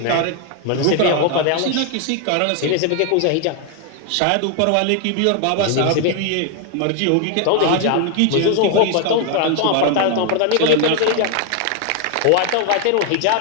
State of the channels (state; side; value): different; both; correlation 0.00